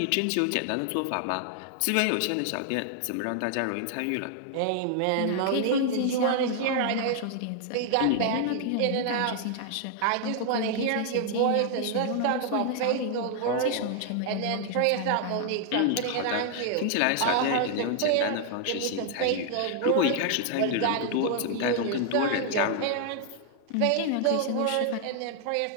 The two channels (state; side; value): different; both; correlation 0.00